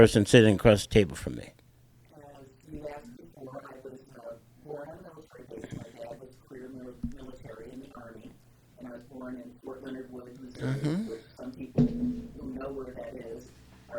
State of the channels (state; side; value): identical; both; correlation 1.00